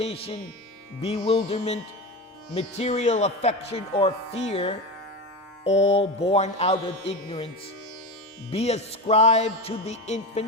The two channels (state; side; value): normal; both; correlation 0.23